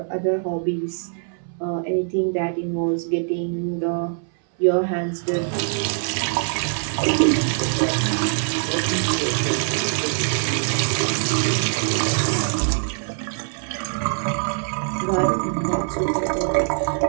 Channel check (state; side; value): silent; left; 61 dB below the other